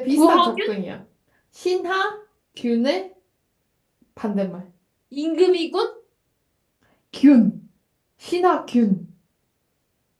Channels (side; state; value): both; identical; correlation 1.00